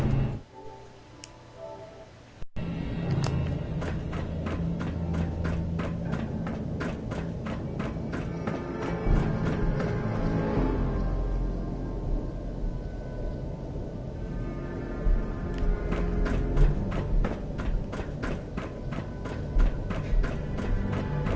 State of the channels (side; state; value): both; identical; correlation 1.00